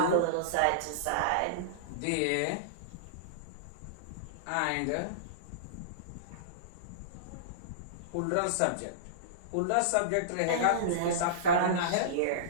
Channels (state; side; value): different; both; correlation -0.03